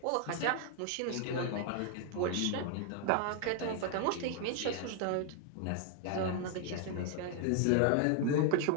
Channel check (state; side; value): different; both; correlation 0.00